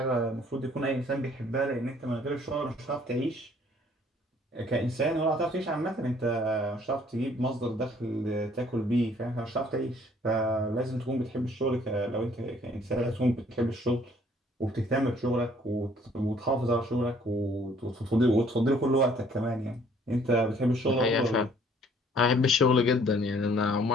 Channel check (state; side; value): normal; both; correlation 0.60